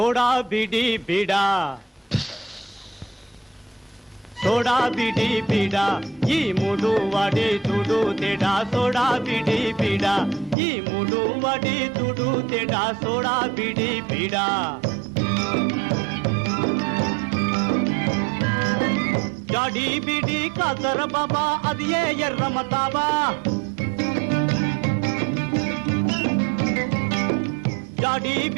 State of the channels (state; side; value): drops out; left; at 10.6 s